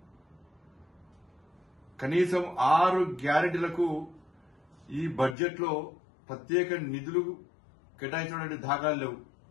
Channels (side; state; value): right; drops out; at 5.4 s